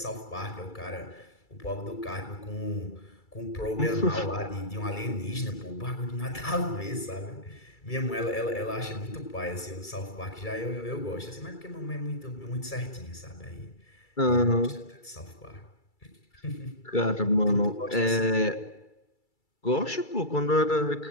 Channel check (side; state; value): right; late; 2.3 ms